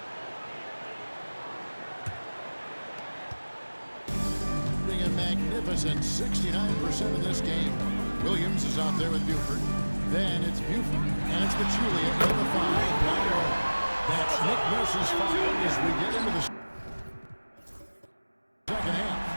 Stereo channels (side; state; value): both; inverted; correlation -1.00